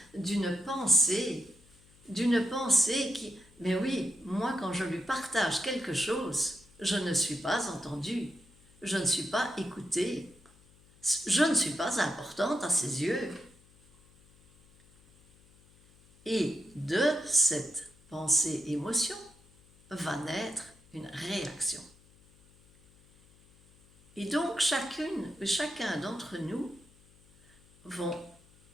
d'une pensée qui... Mais oui, moi, quand je lui partage quelque chose, je ne suis pas entendue, je ne suis pas écoutée, je ne suis pas importante à ses yeux. Et de cette pensée-émotion va naître une réaction. Et donc, chacun d'entre nous vont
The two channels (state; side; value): noise; left; hum, 28 dB below the sound